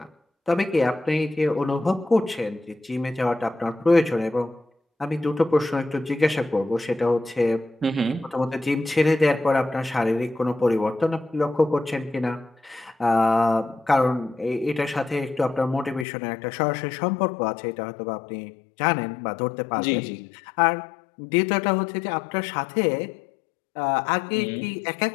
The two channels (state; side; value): drops out; right; at 16.1 s